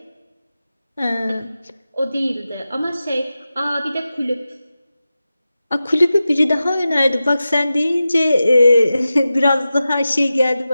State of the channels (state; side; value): inverted; both; correlation -0.93